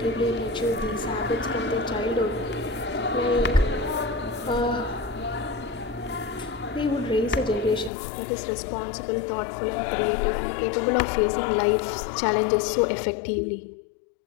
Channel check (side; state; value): right; drops out; at 7.9 s